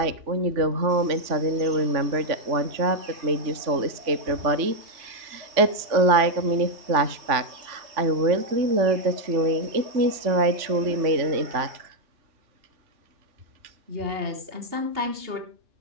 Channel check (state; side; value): late; left; 3.4 ms